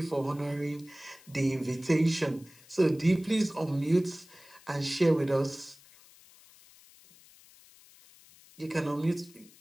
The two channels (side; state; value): left; noise; hiss, 25 dB below the sound